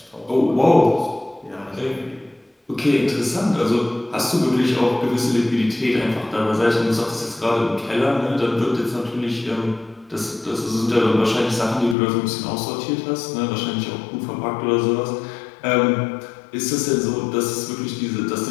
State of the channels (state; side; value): drops out; right; at 12.0 s